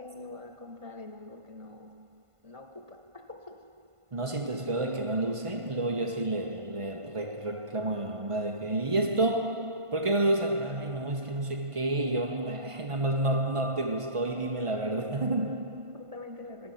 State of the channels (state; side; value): late; left; 1.5 ms